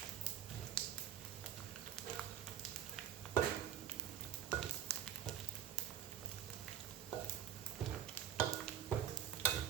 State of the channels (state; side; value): quieter; left; 10.0 dB